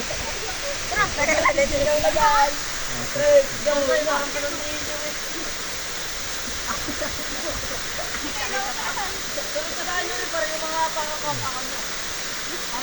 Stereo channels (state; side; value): identical; both; correlation 1.00